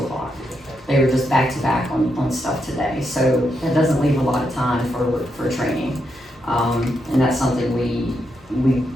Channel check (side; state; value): both; normal; correlation 0.82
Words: o'clock. They were just back to back on stuff today, so that doesn't leave a lot of time for training. And that's something we